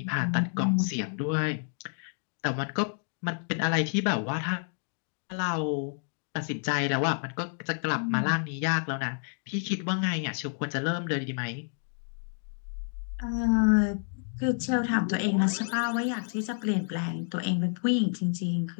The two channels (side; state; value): right; silent; 58 dB below the other